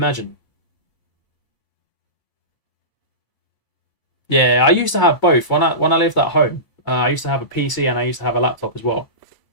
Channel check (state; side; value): late; right; 1.0 ms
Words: Yeah, I used to have both. When I lived at home, I used to have a PC and I used to have a laptop as well.